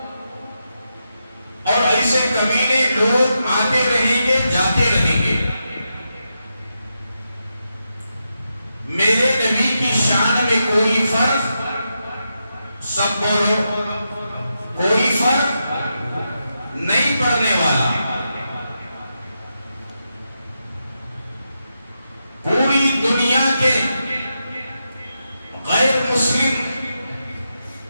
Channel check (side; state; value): both; inverted; correlation -0.86